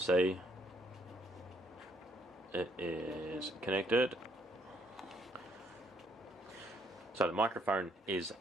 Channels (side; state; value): both; normal; correlation 0.69